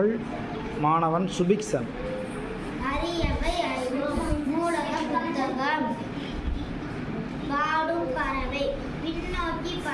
மாணவன் சுபிக்சன். அரியவை அறிவோம். நூலக புத்தகம். பாடும் பறவை. பின்னோக்கி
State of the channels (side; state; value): both; identical; correlation 1.00